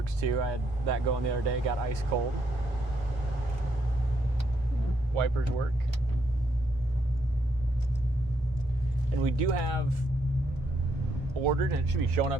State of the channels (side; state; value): both; normal; correlation 0.75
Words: too. I had that going the other day, got ice cold. Wipers work. And we do have ordered, and it should be showing